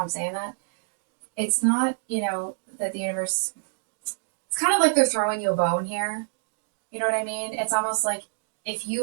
I'm saying that. It's not, that the universe, it's kind of like they're throwing you a bone here. You know what I mean? It's almost like if you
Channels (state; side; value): silent; left; digital silence